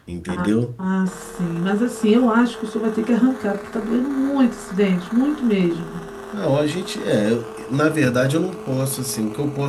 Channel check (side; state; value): both; identical; correlation 1.00